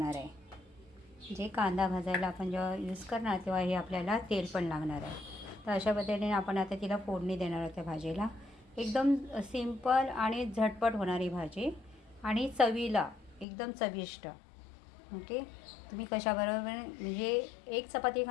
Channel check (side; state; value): right; drops out; at 13.5 s